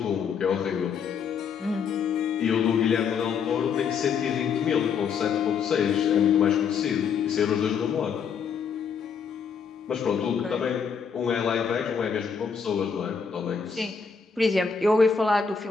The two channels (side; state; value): right; quieter; 6.4 dB